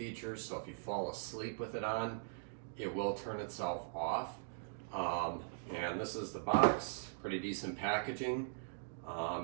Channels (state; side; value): silent; left; digital silence